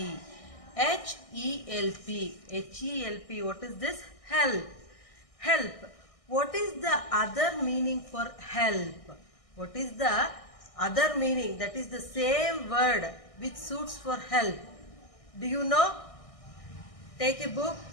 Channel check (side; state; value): right; late; 1.6 ms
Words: H-E-L-P. H-E-L-P. What is this? Help. Help. What is the other meaning for help? What is the other meaning? That is the same word which suits for help. Do you know? Take a book.